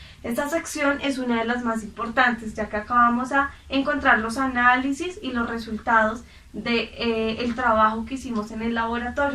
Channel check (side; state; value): both; identical; correlation 1.00